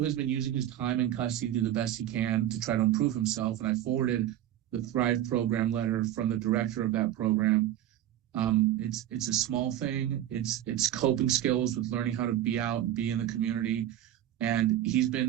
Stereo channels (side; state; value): left; quieter; 12.2 dB